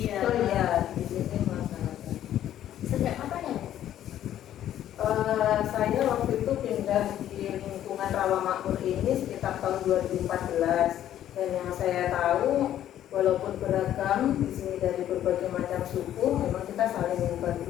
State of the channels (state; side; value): quieter; right; 11.6 dB